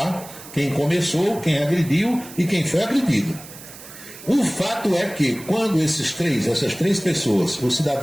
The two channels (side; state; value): right; noise; hiss, 16 dB below the sound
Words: quem começou, quem agrediu e quem foi agredido. O fato é que quando essas três pessoas, o